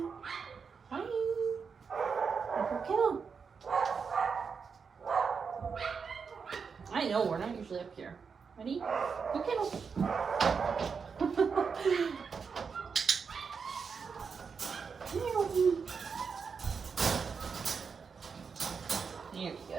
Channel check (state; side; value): quieter; left; 5.7 dB